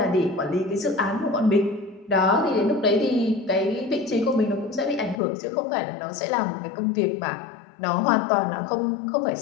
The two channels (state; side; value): drops out; right; at 5.2 s